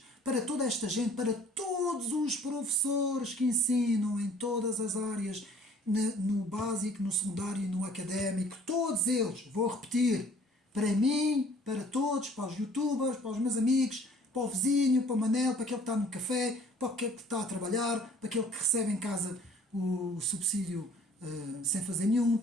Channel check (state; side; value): normal; both; correlation 0.55